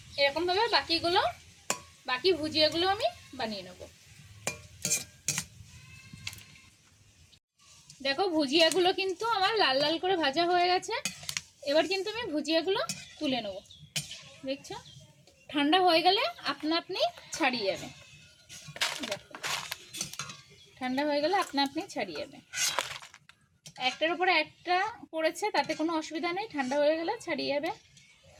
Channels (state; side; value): identical; both; correlation 1.00